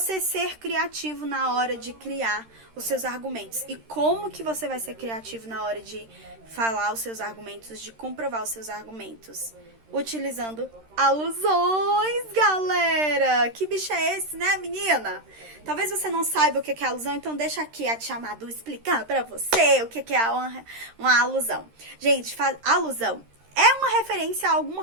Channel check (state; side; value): late; left; 13 ms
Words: ser criativo na hora de criar os seus argumentos. E como que você vai ser criativo na hora de falar os seus argumentos, de comprovar os seus argumentos? Utilizando alusões, galera! Que bicho é esse, né, menina? Talvez você não saiba o que é alusão, então deixa aqui a tia Madu explicar pra você o que é uma alusão. Gente, alusão é uma referência a alguma